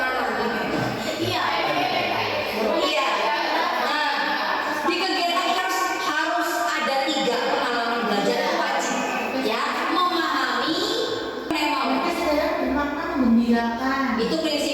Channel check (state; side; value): identical; both; correlation 1.00